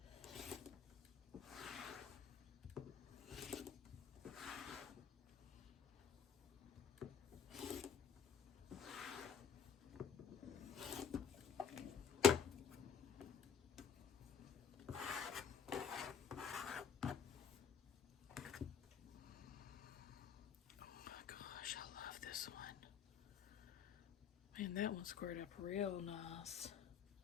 Man, that one squared up real nice.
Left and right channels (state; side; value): quieter; right; 7.4 dB